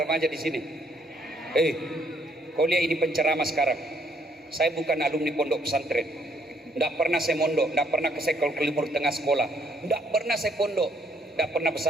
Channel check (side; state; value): both; normal; correlation 0.67